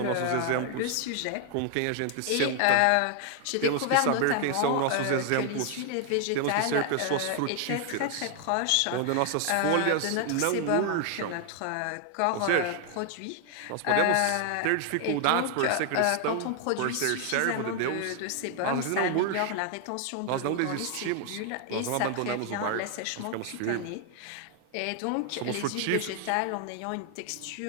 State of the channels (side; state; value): both; different; correlation 0.00